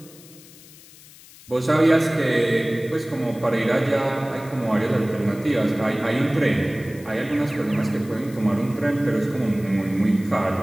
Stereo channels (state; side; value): noise; left; hiss, 22 dB below the sound